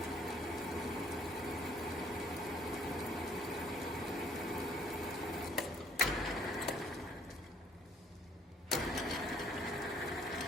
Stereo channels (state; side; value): normal; both; correlation 0.62